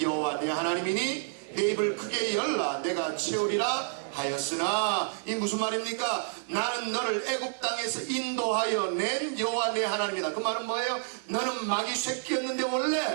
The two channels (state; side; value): silent; left; digital silence